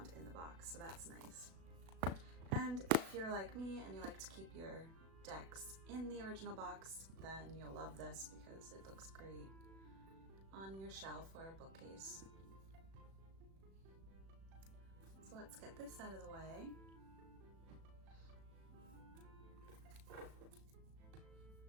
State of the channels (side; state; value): left; late; 36 ms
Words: in the box, so that's nice. And if you're like me and you like to keep your decks in the original box, then you'll love this because it looks great on your shelf or a bookcase. So let's get this out of the way.